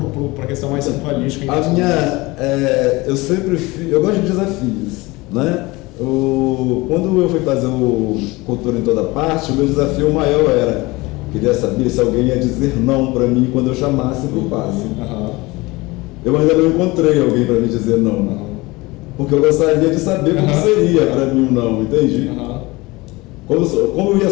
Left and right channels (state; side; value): quieter; right; 22.3 dB